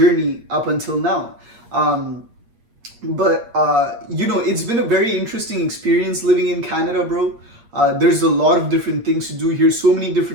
up until now. But it's been a very interesting experience living in Canada, bro. There's a lot of different things to do here. So many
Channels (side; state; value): left; late; 8.5 ms